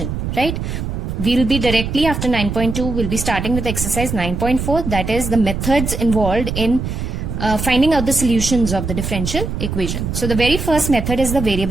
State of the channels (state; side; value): noise; right; rumble, 4 dB below the sound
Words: right? We'll be directly after 9.2, we'll be starting with exercise 9.4, that is the methods involved in finding out the solutions of the differential equation. So the very first method is the